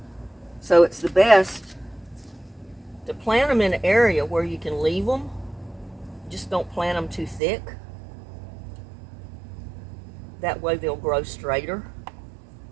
So it's the best to plant them in an area where you can leave them. Just don't plant them too thick. That way they'll grow straighter.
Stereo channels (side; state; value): left; drops out; at 7.4 s